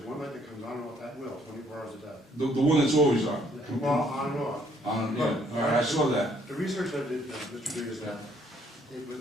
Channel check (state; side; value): normal; both; correlation 0.66